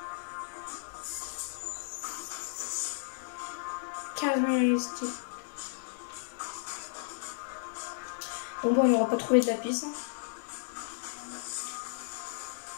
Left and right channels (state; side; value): silent; right; 55 dB below the other